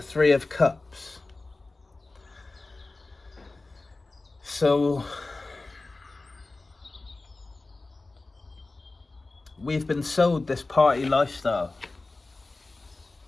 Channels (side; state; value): right; quieter; 3.3 dB